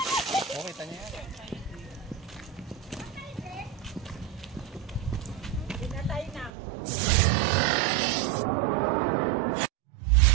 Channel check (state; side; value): drops out; left; at 6.5 s